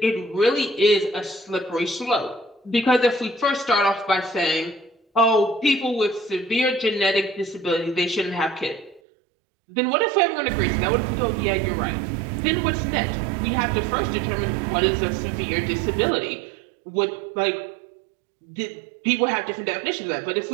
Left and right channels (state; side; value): drops out; left; at 9.0 s